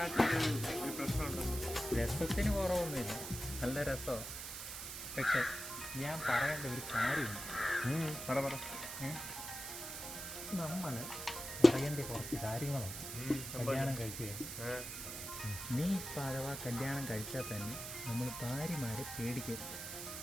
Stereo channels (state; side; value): noise; right; hiss, 7 dB below the sound